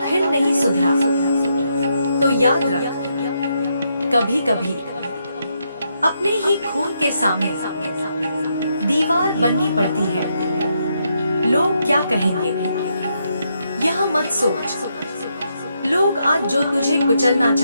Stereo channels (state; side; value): inverted; both; correlation -0.79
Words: फिर नहीं सुधरा तो याद रख, कभी कभी अपने ही खून के सामने दीवार बननी पड़ती है। लोग क्या कहेंगे यह मत सोच। लोग आज जो तुझे कुचलना